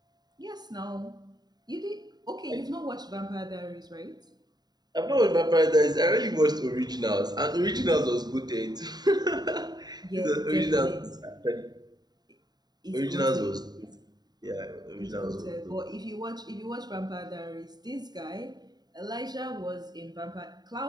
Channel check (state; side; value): late; left; 0.20 ms